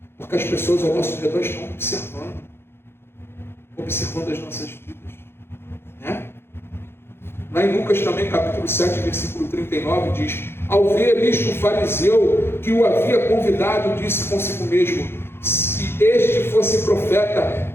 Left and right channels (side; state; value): right; late; 0.11 ms